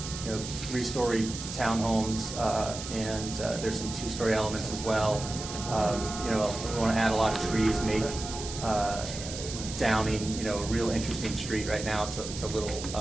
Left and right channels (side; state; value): right; noise; hiss, 9 dB below the sound